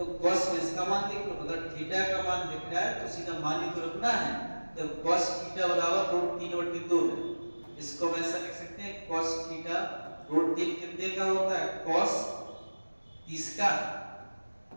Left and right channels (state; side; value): inverted; both; correlation -1.00